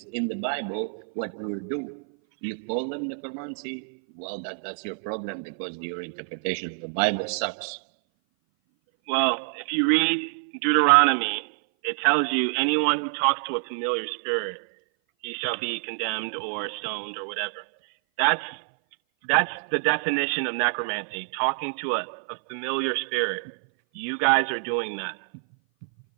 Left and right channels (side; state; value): left; silent; 57 dB below the other